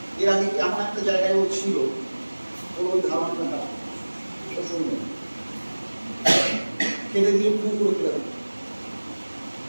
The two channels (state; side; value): inverted; both; correlation -1.00